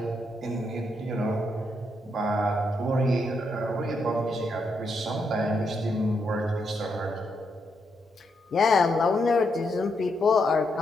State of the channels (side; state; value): both; normal; correlation 0.80